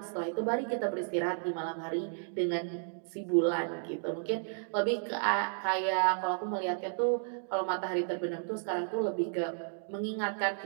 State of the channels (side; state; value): left; silent; digital silence